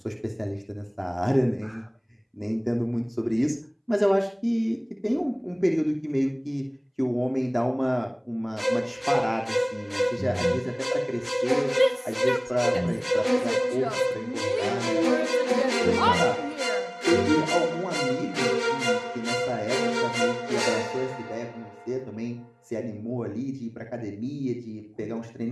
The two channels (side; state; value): both; identical; correlation 1.00